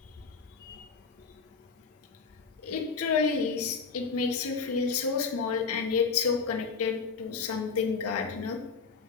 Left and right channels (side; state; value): right; quieter; 5.1 dB